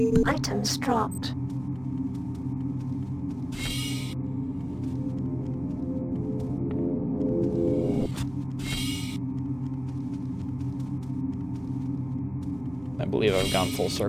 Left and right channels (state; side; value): noise; right; hum, 20 dB below the sound